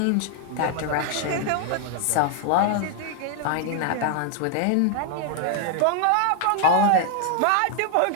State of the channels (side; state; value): both; different; correlation 0.00